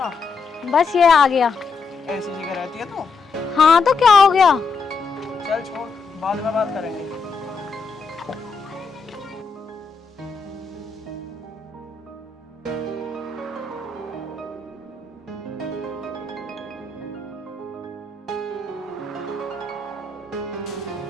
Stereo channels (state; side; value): quieter; right; 4.6 dB